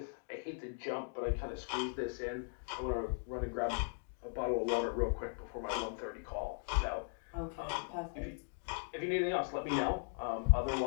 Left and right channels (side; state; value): right; silent; digital silence